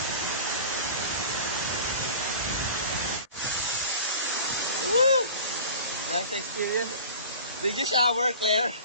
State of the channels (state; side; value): inverted; both; correlation -0.41